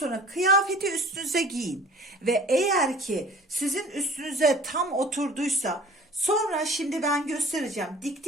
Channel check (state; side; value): normal; both; correlation 0.46